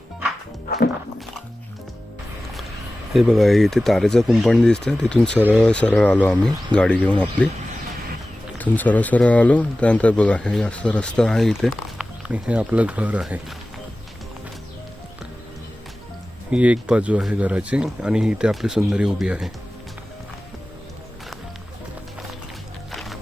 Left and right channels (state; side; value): normal; both; correlation 0.96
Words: हे बघा, इथे तारेचं कुंपण दिसतं. तिथून सरळ सरळ आलो आम्ही गाडी घेऊन आपली. तिथून सरळ सरळ आलो. त्यानंतर बघा हे असं रस्ता आहे इथे आणि हे आपलं घर आहे. ही एक बाजू आहे घराची आणि इथे आपली सुंदरी उभी आहे.